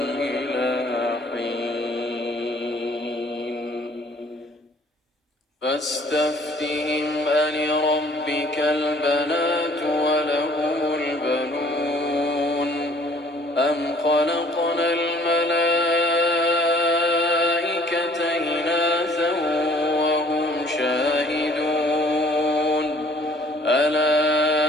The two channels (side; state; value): both; normal; correlation 0.58